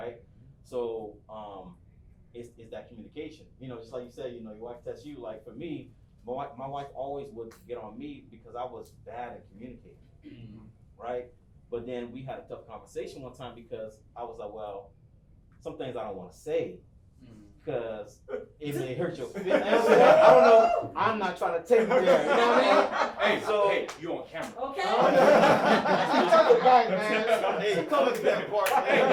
So it's that communication. You know, just like you said, you know, your wife tests you. Like for me, my wife always would get on me because I was bad at communicating, right? But then we had a tough conversation one time because I was like, well, some things I don't want to say because it may hurt your feelings. I don't know. I'm not trying to take you there. You know what I mean? Hey, you on camera. Okay. Hey, come to that part. Hey, edit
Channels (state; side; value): identical; both; correlation 1.00